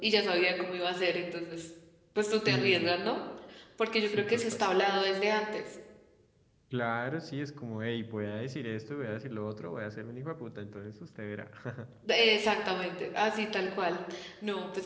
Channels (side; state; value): both; identical; correlation 1.00